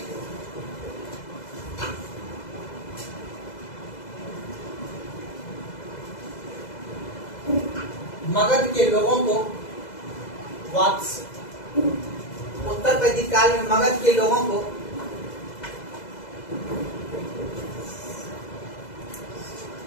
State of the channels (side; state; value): right; late; 2.0 ms